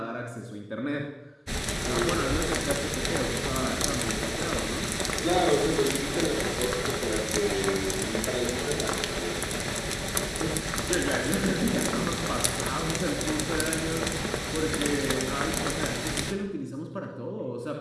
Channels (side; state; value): both; identical; correlation 1.00